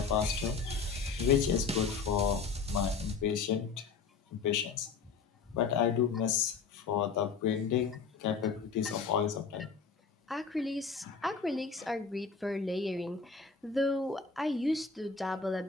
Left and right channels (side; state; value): right; quieter; 5.3 dB